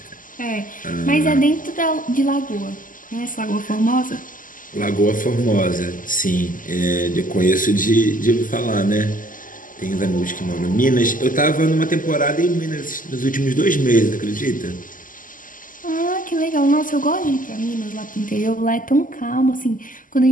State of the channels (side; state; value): right; late; 0.39 ms